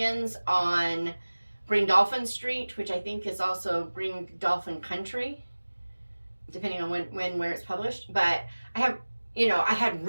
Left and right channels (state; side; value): inverted; both; correlation -1.00